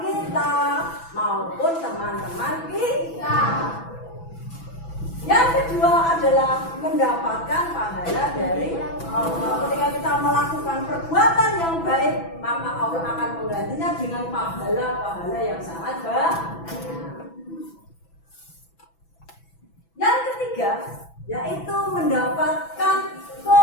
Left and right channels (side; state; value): right; late; 6.0 ms